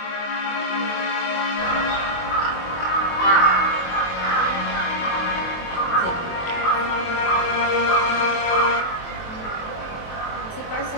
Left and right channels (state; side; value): late; right; 23 ms